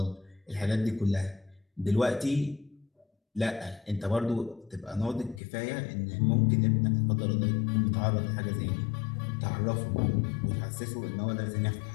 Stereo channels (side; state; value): right; drops out; at 5.4 s